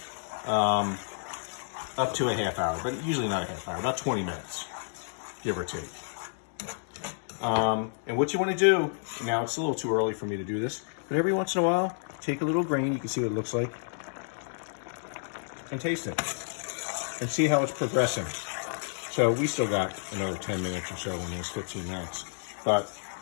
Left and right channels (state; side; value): silent; right; digital silence